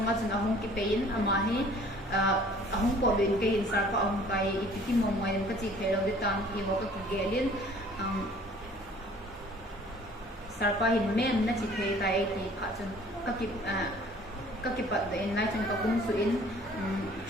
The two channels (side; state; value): both; normal; correlation 0.53